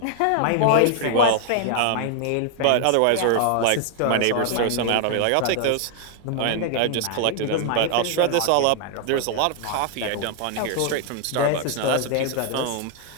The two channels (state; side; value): different; both; correlation 0.00